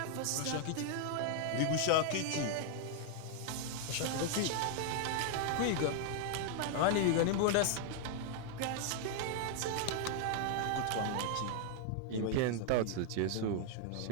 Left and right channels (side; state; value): both; different; correlation 0.00